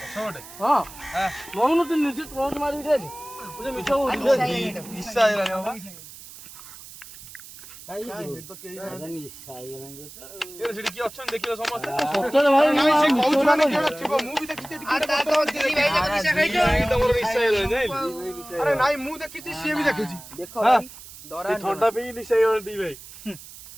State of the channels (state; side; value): noise; right; hiss, 17 dB below the sound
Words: ପଛ ଗୋଟେ? ହଁ ନଉନୁ ତୁ ନିଜେ ଟର୍ଚ୍ଚ ମାରିକି ଦେଖ। ମିଛ ନିଶା ହେଇଗଲାଣି ବାବା। ସେଠି କିଏ ଅଛନ୍ତି ଦେଖିଲ ସମସ୍ତେ? ନାଇଁ ସେ କହୁଛୁ ମାନେ କିଏ ଗୋଟେ ଥିବ। ମୁଁ ବି ଦେଖିଛି ଏଠି କିଏ ଗୋଟେ ବସିଥିଲା। ତମର ନିଶା ହେଇଗଲାଣି ଜାଣିଲୁ? ଆରେ ନାଇଁ ମୁଁ ଦେଖିଛି ସିଏ ବି ଦେଖିଛି। ଥଣ୍ଡା ପିଇକି ନିଶା ହେଇଗଲାଣି ଦି ଭାଇ।